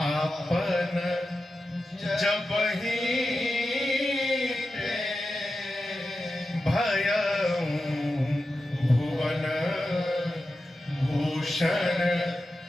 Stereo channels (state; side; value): normal; both; correlation 0.92